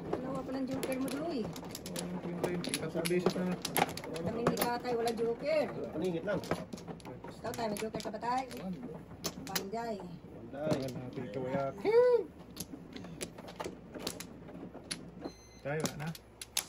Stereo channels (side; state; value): both; identical; correlation 1.00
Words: Dalawa pa ng joker mo doy. walang kwenta yun. Tatlong beses na. Kami ni Tatay, wala joker. Paningit lang. Ikaw tayo, may joker ka ba tayo? Panday. Banday. Tagal natin kawayak. Tayo, wala na.